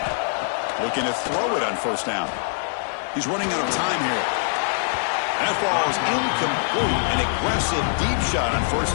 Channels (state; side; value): silent; right; digital silence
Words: 14. Looking to throw it on first down. He's running out of time here. That ball is incomplete. An aggressive deep shot on